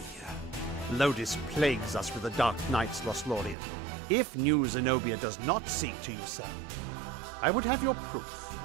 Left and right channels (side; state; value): left; drops out; at 3.6 s